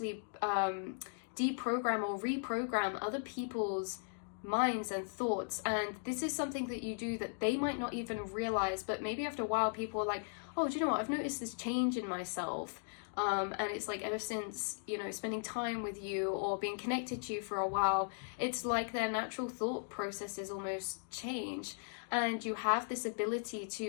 deprogram or reprogram other people's minds and thoughts. And this is something that you do that they might not even realize, but maybe after a while people are like, oh, do you know what, I've noticed this change in myself. And it's like ever since, you know, spending time with you or being connected to you for a while, it's like their natural thought processes almost change. And you have this ability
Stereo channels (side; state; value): right; silent; digital silence